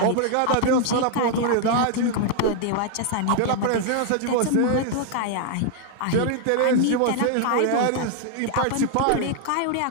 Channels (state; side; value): different; both; correlation 0.00